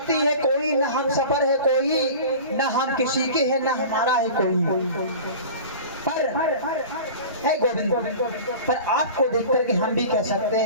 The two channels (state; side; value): inverted; both; correlation -0.37